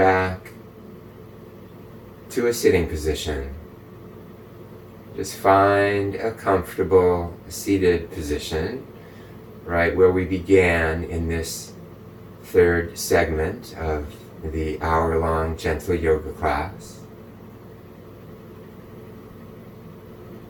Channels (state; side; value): identical; both; correlation 1.00